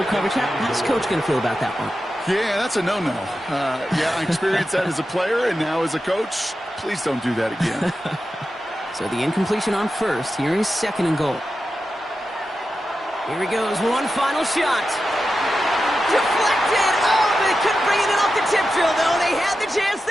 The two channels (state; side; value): normal; both; correlation 0.91